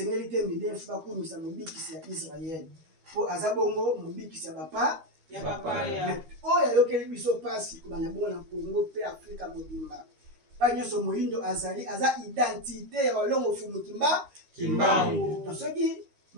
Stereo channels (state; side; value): late; left; 13 ms